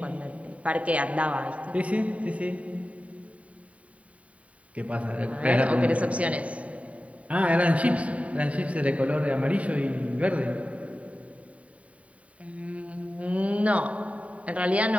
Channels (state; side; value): late; left; 0.067 ms